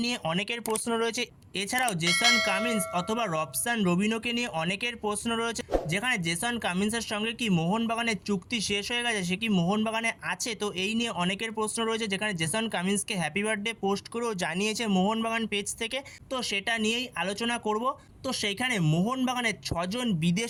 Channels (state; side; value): identical; both; correlation 1.00